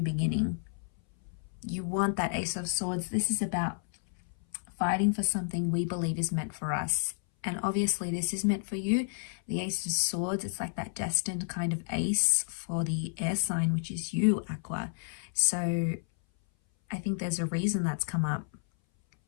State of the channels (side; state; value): right; silent; 57 dB below the other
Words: beginning. You want that Ace of Swords. This is about fighting for something we believe is meant for us. And obviously this is meant for you. The Ace of Swords, it's like that destined kind of ace for the air sign, which is you, Aqua. So I think there's a reason that's come up.